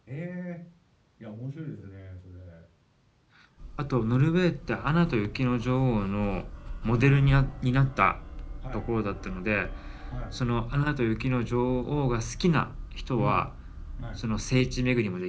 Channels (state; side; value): identical; both; correlation 1.00